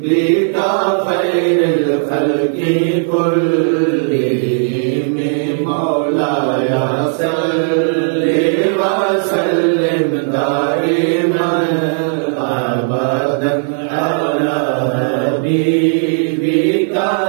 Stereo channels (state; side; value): silent; left; digital silence